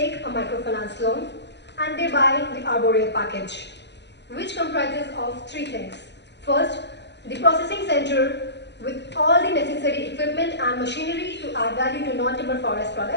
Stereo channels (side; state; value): right; late; 0.50 ms